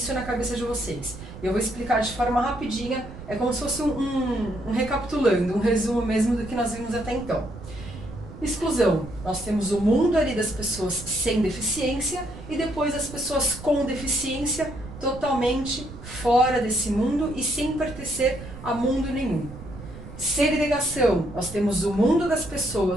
na cabeça de vocês. Eu vou explicar de forma rapidinha, é como se fosse um recapitulando, um resumo mesmo do que nós vimos até então. Exclusão, nós temos o mundo ali das pessoas sem deficiência e depois as pessoas com deficiência totalmente fora desse mundo e sem pertencer a mundo nenhum. Segregação, nós temos o mundo das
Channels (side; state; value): right; noise; rumble, 13 dB below the sound